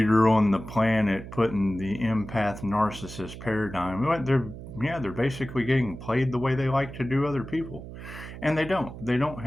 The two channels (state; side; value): noise; right; hum, 12 dB below the sound